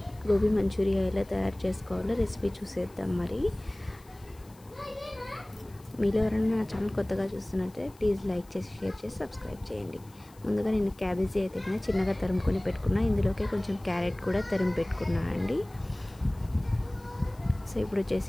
మంచూరియా ఎలా తయారు చేసుకోవాలో రెసిపీ చూసేద్దాం. మరి మీలో ఎవరైనా నా ఛానల్ కొత్తగా చూస్తున్నట్టే ప్లీజ్ లైక్ చేసి, షేర్ చేసి, సబ్స్క్రైబ్ చేయండి. ముందుగా నేను క్యాబేజీ అయితే చిన్నగా తరుముకొని పెట్టుకున్నా. ఇందులోకి కొంచెం క్యారెట్ కూడా తరిమి పెట్టుకున్నా అండి. సో ఇప్పుడు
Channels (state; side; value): noise; left; hiss, 27 dB below the sound